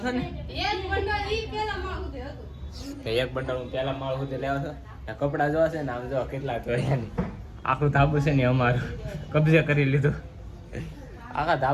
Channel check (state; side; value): identical; both; correlation 1.00